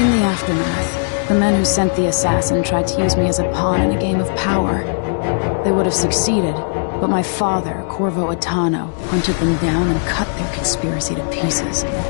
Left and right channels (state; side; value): silent; right; digital silence